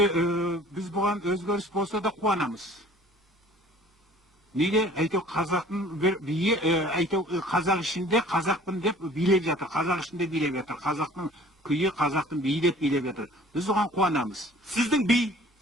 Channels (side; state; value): both; normal; correlation 0.51